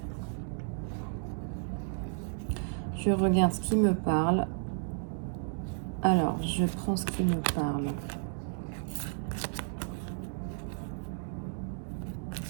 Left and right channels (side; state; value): left; silent; digital silence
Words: Je regarde ce qui me parle. Alors, je prends ce qui me parle.